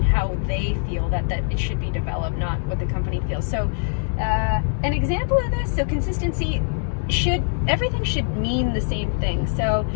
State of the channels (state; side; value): silent; right; digital silence